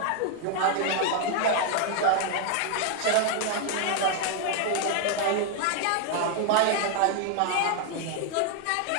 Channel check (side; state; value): both; different; correlation 0.00